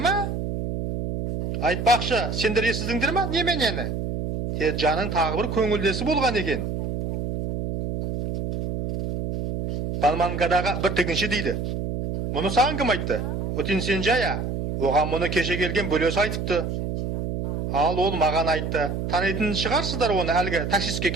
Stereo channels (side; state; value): right; noise; hum, 3 dB below the sound